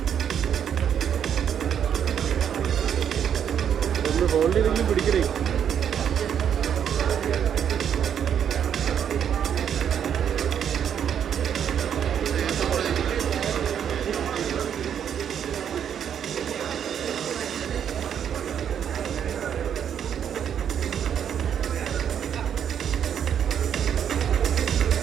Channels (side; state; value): left; quieter; 8.7 dB